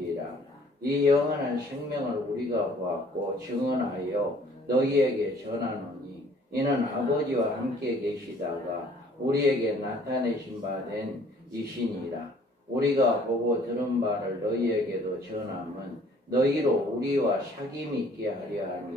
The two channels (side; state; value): both; normal; correlation 0.57